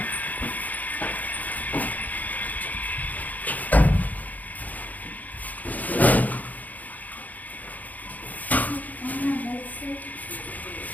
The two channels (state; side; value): late; right; 0.079 ms